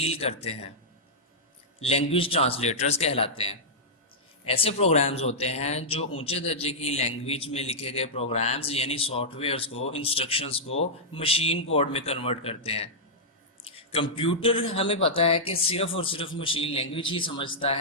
करते हैं, लैंग्वेज ट्रांसलेटर्स कहलाते हैं। ऐसे प्रोग्राम्स होते हैं जो ऊंचे दर्जे की लैंग्वेज में लिखे गए प्रोग्राम्स यानी सॉफ्टवेयर्स को, इंस्ट्रक्शंस को मशीन कोड में कन्वर्ट करते हैं। कंप्यूटर हमें पता है कि सिर्फ और सिर्फ मशीन लैंग्वेज ही समझता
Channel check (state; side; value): normal; both; correlation -0.10